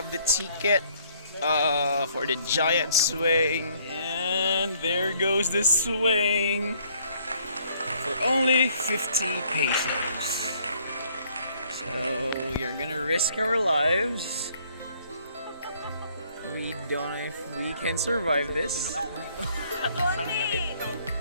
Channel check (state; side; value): inverted; both; correlation -0.63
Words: the ticket for the giant swing, and there goes the swing for only 50 pesos. So you're gonna risk our lives. We don't know if we can survive this.